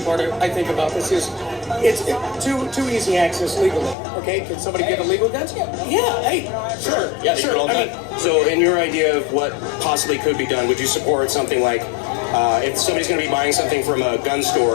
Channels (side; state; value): right; drops out; at 4.0 s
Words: part I think about this is it's too easy access legally. Okay, can somebody get illegal guns? Yeah, hey, sure. Yeah, sure. all done. So in your idea of what possibly could be done, would you support something like if somebody's going to be buying something from a gun